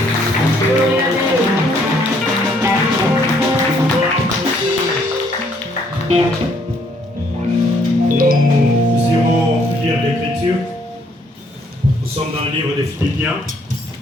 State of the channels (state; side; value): normal; both; correlation 0.67